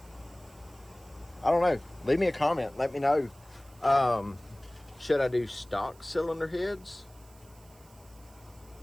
I don't know. Leave me a comment. Let me know. Should I do stock cylinder heads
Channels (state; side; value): noise; right; hiss, 27 dB below the sound